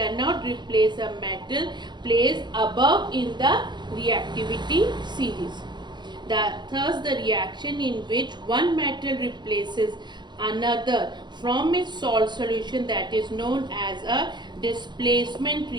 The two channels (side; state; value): left; late; 0.21 ms